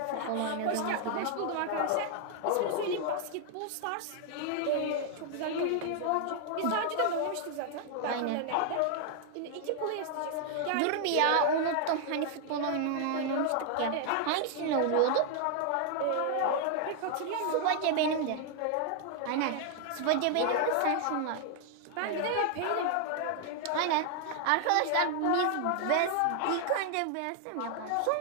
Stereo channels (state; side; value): different; both; correlation 0.00